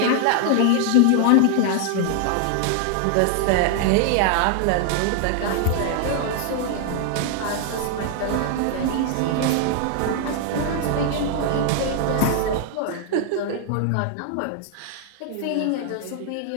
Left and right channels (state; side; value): different; both; correlation 0.00